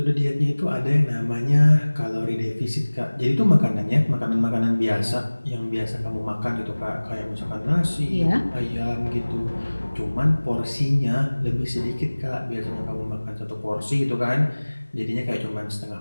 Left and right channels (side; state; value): both; inverted; correlation -1.00